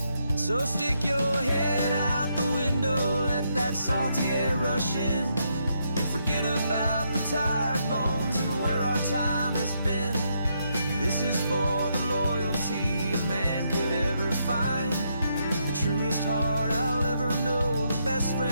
So stick your head out the window, let that salty air rush in, and forget about the tired bones and where our time has been. This is for the loyalty a man could ever find, the truest heart I'll ever know, the best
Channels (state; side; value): inverted; both; correlation -0.78